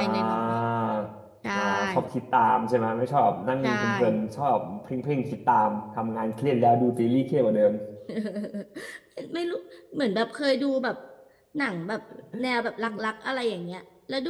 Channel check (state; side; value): identical; both; correlation 1.00